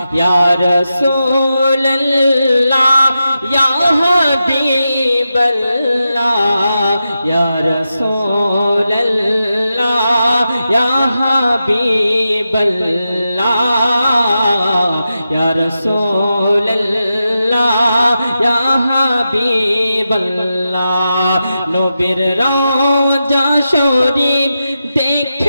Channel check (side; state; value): both; inverted; correlation -0.89